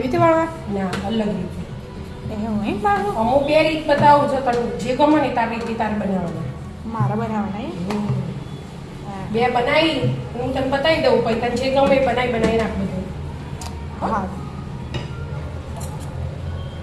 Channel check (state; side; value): identical; both; correlation 1.00